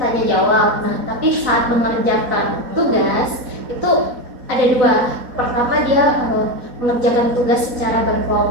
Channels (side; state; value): left; late; 4.1 ms